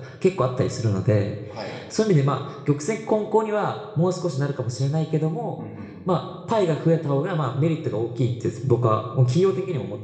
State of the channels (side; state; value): both; identical; correlation 1.00